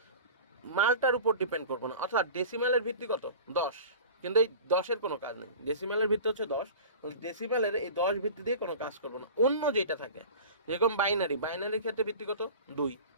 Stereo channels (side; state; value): both; inverted; correlation -0.38